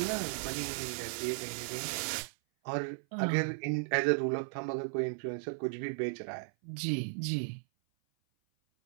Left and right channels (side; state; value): left; silent; 54 dB below the other